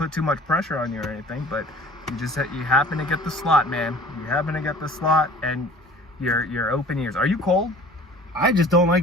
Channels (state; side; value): normal; both; correlation 0.47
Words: too much pressure on you or anything, but you happen to get the slot, man. You happen to get the slot, and you're open ears. Are you cold? I just don't